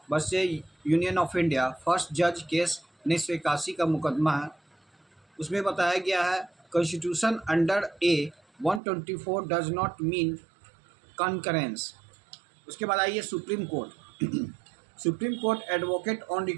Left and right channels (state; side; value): drops out; left; at 8.8 s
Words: versus union of India first जज केस 1981 का मुकदमा है। उसमें बताया गया है constitution under A 124 does not mean concurrence. उसके बाद आइए supreme court advocate on